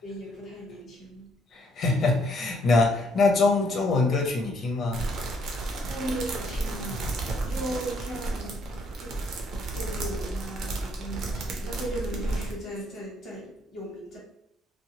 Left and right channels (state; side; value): normal; both; correlation 0.69